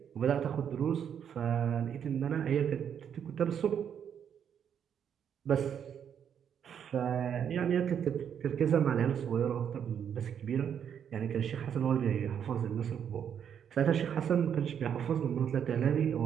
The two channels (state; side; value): quieter; left; 8.4 dB